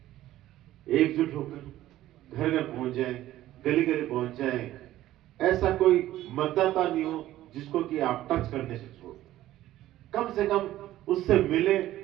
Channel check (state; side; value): quieter; left; 14.4 dB